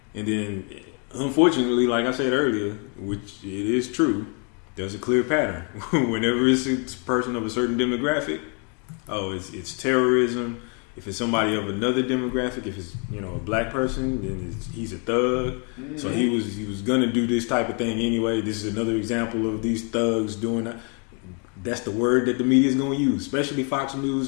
And then, unfortunately, like I said earlier, which it is true, there's a clear pattern. Whenever it's a person of a certain demographic, it's terrorism. If it's somebody of another demographic, if it's a black person, then he's a thug. Mm-hmm. So he was gonna do this type of thing anyway. This is another example of these thugs doing that. That's the word that the media is gonna use, especially Fox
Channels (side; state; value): right; quieter; 37.6 dB